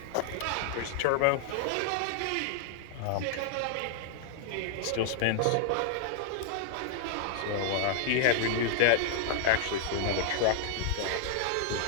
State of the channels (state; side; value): different; both; correlation -0.01